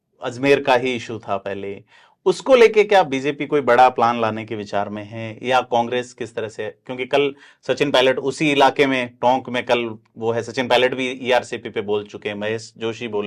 अजमेर का ही इशू था पहले, उसको लेके क्या बीजेपी कोई बड़ा प्लान लाने के विचार में है, या कांग्रेस किस तरह से? क्योंकि कल सचिन पायलट उसी इलाके में, टोंक में कल वो है, सचिन पायलट भी ईआरसीपी पे बोल चुके हैं, महेश जोशी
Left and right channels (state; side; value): identical; both; correlation 1.00